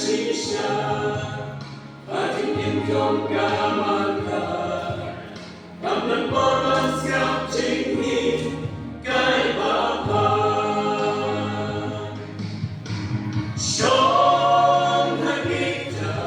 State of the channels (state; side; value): identical; both; correlation 1.00